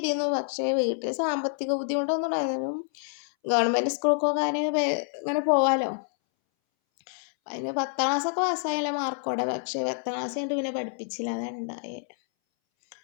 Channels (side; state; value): right; silent; 60 dB below the other